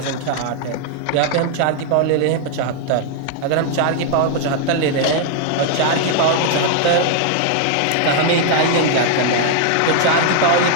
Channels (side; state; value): both; different; correlation 0.00